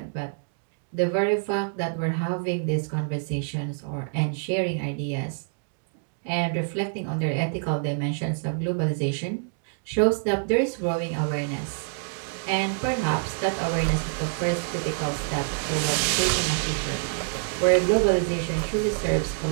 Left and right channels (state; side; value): silent; left; digital silence